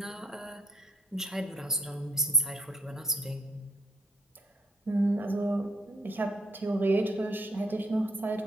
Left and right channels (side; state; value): both; normal; correlation 0.68